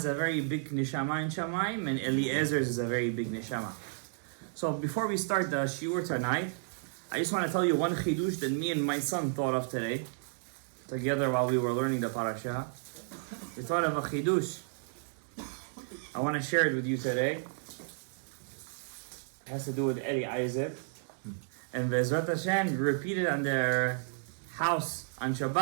a very big Nishama in Shamayim, and Eliezer's is a very big Nishama. So before we start the shiur tonight, I just want to tell you one chidush that me and my son thought of today, together while we were learning the parasha. We thought of a chidush. I want to share it with you today. It has to do with Eliezer. And Bezrat Hashem repeated on their house on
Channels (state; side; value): silent; left; 56 dB below the other